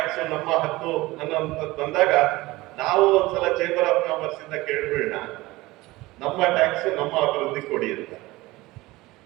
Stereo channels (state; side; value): quieter; left; 19.9 dB